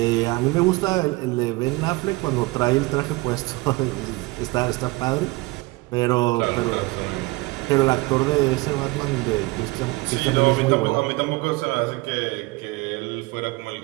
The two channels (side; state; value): left; quieter; 23.3 dB